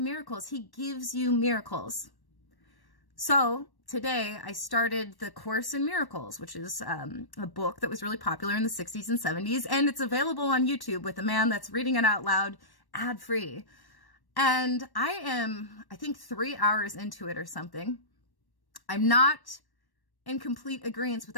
He gives you miracles. So today I started the Course in Miracles, which is a book that was really popular in the 60s and 70s. And it's available on YouTube with a man that's reading it out loud, ad-free. And I am, I think, 3 hours into it or something. I'm not in complete agreement with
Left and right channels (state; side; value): late; right; 1.1 ms